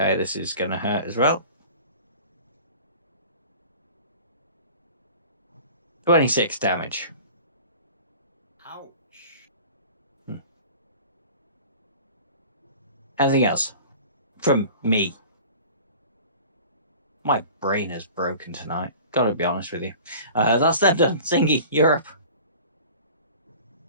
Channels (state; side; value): inverted; both; correlation -0.42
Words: this is going to hurt as well. 26 damage. Ouch. Anything else? From me. My brain is broken tonight. Gotta be honest with you. That's them done. Zingy, you're up.